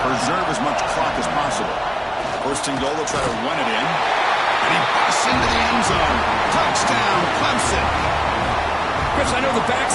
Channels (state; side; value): identical; both; correlation 1.00